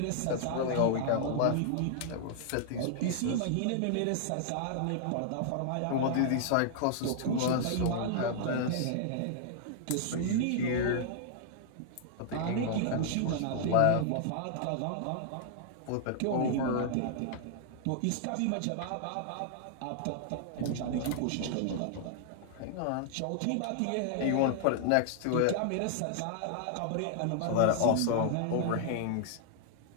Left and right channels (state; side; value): different; both; correlation -0.01